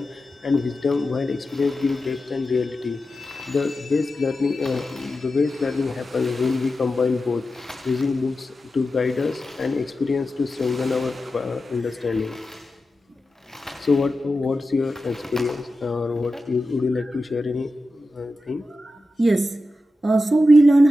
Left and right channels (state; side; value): normal; both; correlation 0.92